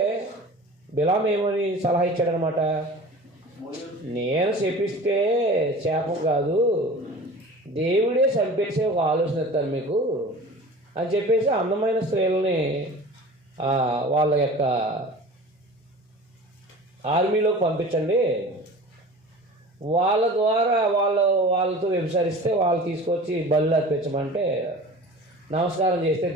బిలాం ఏమని సలహా ఇచ్చాడనమాట, నేను శపిస్తే శాపం కాదు, దేవుడే చంపేసే ఒక ఆలోచన ఇస్తాను మీకు అని చెప్పేసి అందమైన స్త్రీలని వాళ్ళ యొక్క ఆర్మీలోకి పంపించండి, వాళ్ళ ద్వారా వాళ్ళతో వ్యభిచరిస్తే వాళ్ళు తీసుకొచ్చి బళ్ళు అర్పించమంటే నమస్కారం చేస్తే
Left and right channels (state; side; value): normal; both; correlation 0.39